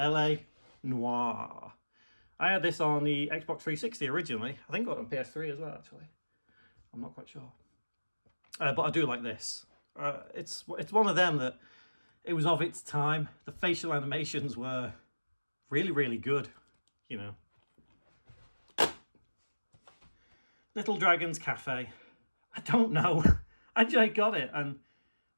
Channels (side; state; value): both; inverted; correlation -1.00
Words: Noir. I had this on the Xbox 360 originally. I think I got it on PS3 as well, actually. I'm not quite sure. But I do like this. It's one of them that it was of its time. The facial animations were really, really good, you know. Little Dragon's Cafe. I don't know. I just got it and